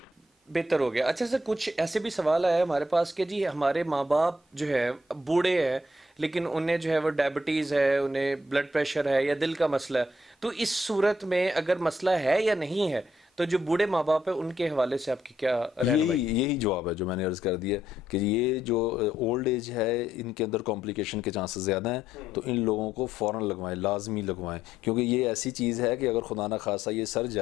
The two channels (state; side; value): normal; both; correlation 0.73